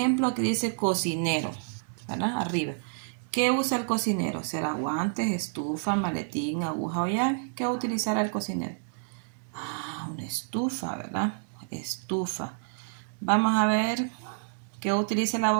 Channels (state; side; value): silent; left; digital silence